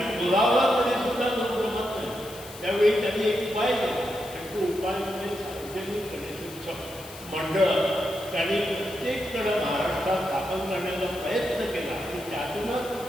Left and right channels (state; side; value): noise; left; hiss, 17 dB below the sound